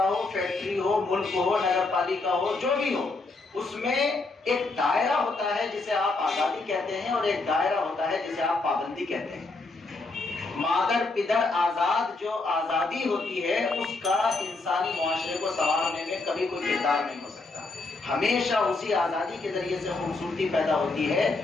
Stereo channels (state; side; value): quieter; right; 3.5 dB